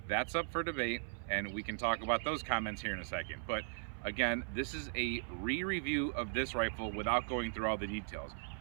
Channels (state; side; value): silent; left; 52 dB below the other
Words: that's up for debate, and we can talk about those comments here in a second. But again, this is a re-review of this rifle without going through all the details.